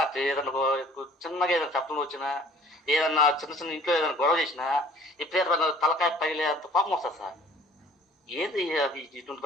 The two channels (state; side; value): normal; both; correlation 0.52